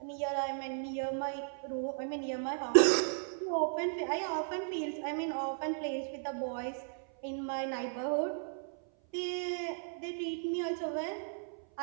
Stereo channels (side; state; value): left; silent; 54 dB below the other